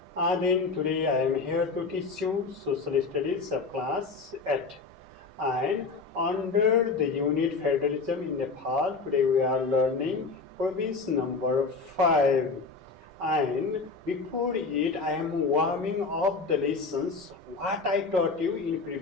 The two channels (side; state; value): right; quieter; 4.3 dB